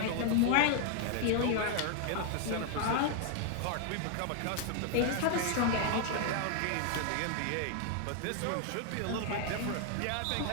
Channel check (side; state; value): both; different; correlation 0.00